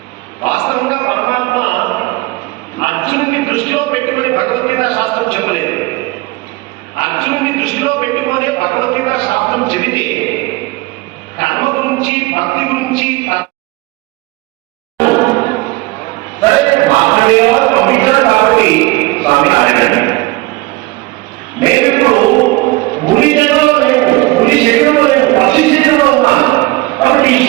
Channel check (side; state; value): left; quieter; 21.8 dB